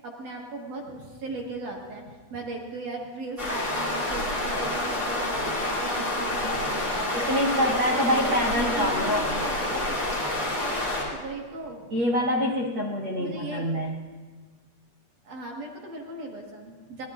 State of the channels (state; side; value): late; left; 8.3 ms